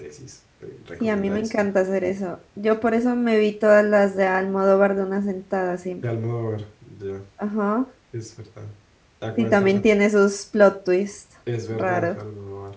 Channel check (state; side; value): identical; both; correlation 1.00